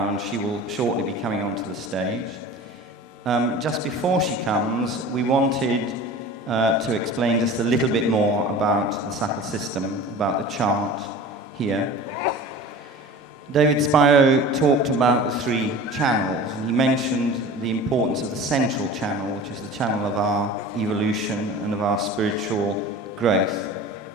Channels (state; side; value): normal; both; correlation 0.38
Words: and she will shortly be coming onto the stage. Just before she comes, we wanted to explain just a little bit more about the subtle system, about the chart here. David Spiro talked about the 3 channels, and he mentioned the importance of the central channel, which is the channel of our evolution and of our spiritual growth.